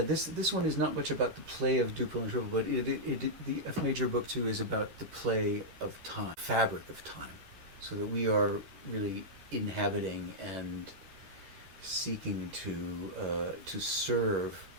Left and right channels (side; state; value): left; late; 13 ms